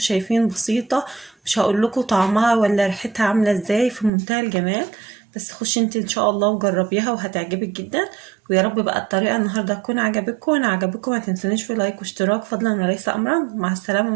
بسيطه، مش هقول لكم طعمها ولا ريحتها عامله ازاي، في منتهى الجمال. بس خشي انت ان شاء الله وجربيها وهتعجبك جدا. ويا رب بقى الطريقه النهارده تكون عجبتكم. وان عجبكم ما تنسونيش في لايك واشتراك فضلا وليس امرا. مع السلامه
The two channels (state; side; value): drops out; left; at 4.1 s